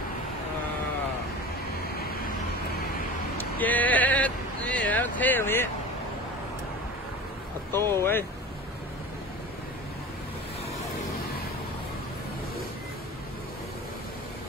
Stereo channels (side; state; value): both; normal; correlation 0.35